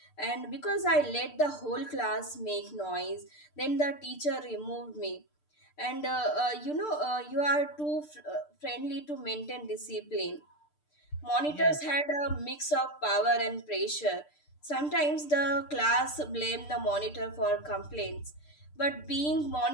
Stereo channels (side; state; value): right; late; 6.7 ms